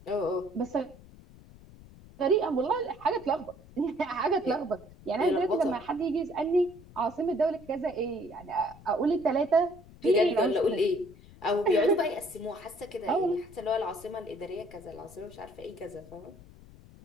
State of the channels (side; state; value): left; noise; rumble, 21 dB below the sound